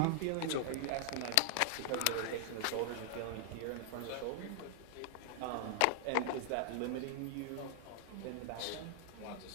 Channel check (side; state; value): both; different; correlation 0.00